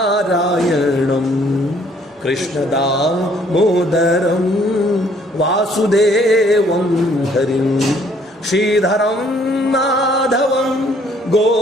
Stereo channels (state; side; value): normal; both; correlation 0.62